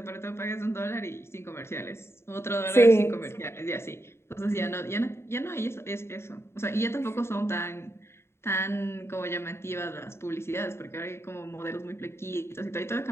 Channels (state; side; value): late; right; 0.12 ms